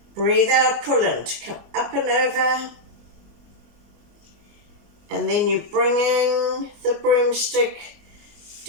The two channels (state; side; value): late; left; 24 ms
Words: Breathe out, pull in to come up and over. And then you're bringing the broomstick